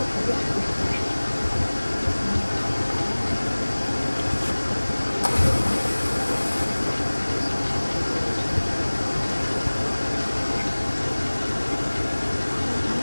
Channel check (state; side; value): inverted; both; correlation -1.00